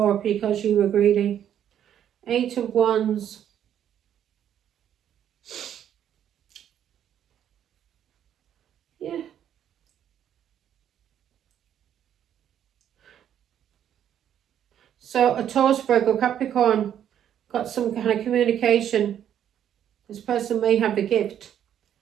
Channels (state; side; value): quieter; left; 9.9 dB